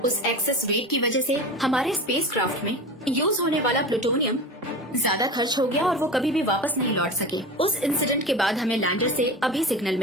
उस एक्सेस वेट की वजह से हमारे स्पेसक्राफ्ट में यूज होने वाला प्लूटोनियम ज्यादा खर्च हो गया और वो कभी भी वापस नहीं लौट सके। उस इंसिडेंट के बाद हमें लैंडर से अभी सिग्नल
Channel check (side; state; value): both; normal; correlation 0.30